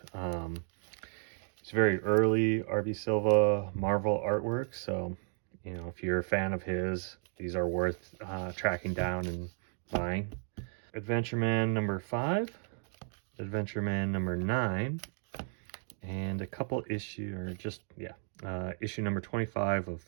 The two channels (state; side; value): silent; left; 55 dB below the other